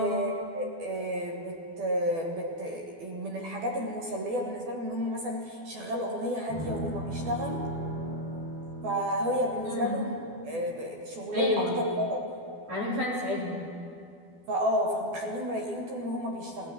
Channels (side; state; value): left; late; 12 ms